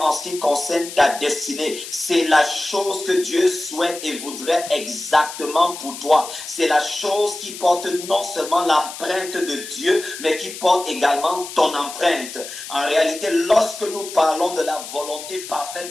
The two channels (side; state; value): left; noise; hiss, 11 dB below the sound